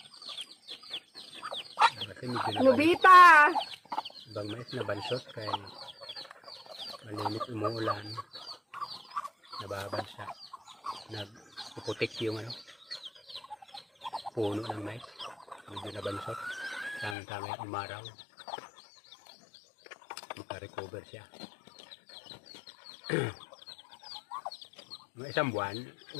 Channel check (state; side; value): drops out; right; at 17.2 s